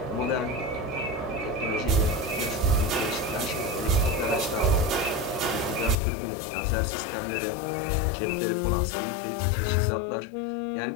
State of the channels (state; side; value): drops out; right; at 6.0 s